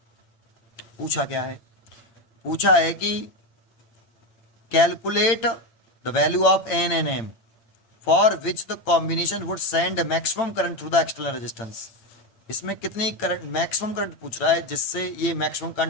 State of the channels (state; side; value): late; right; 8.9 ms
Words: पूछा क्या है, पूछा है कि calculate the value of N N M for which the combination would send maximum current through the external resistance. इसमें कितनी करंट, मैक्सिमम करंट पूछ रहा है, जिससे ये मैक्सिमम